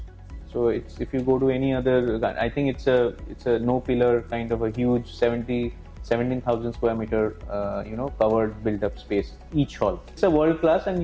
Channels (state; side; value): identical; both; correlation 1.00